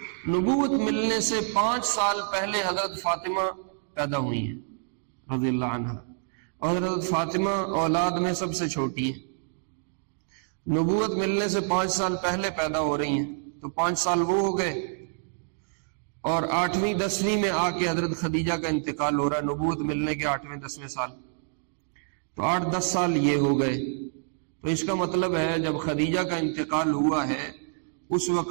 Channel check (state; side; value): silent; left; digital silence